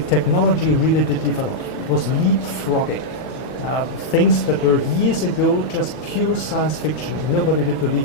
technology really did develop. It was leapfrogging. Things that were years ago just pure science fiction. Nobody did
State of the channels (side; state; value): right; late; 39 ms